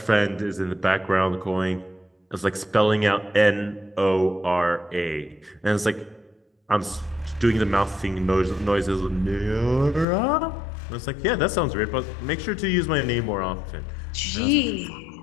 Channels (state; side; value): drops out; right; at 10.1 s